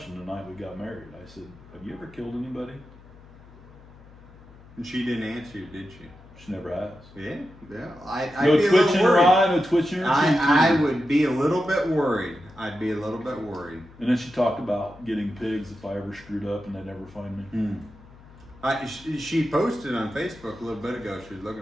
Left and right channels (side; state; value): left; noise; hum, 22 dB below the sound